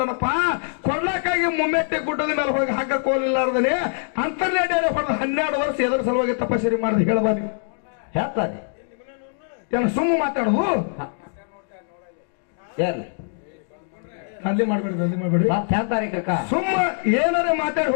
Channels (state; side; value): silent; right; digital silence